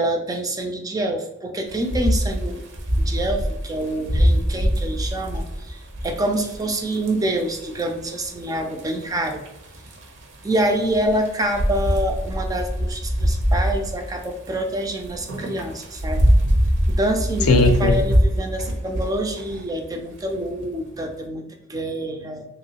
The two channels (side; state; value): both; normal; correlation 0.69